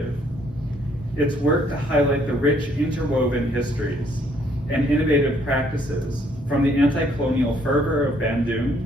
it's work to highlight the rich interwoven histories and innovative practices, from the anti-colonial fervor of Bandung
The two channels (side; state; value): both; normal; correlation 0.66